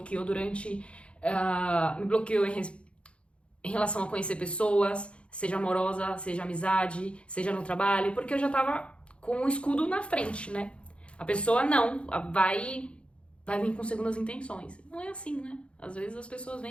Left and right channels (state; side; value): late; right; 0.059 ms